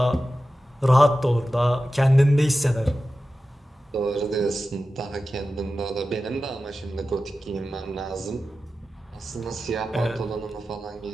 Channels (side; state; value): both; normal; correlation 0.93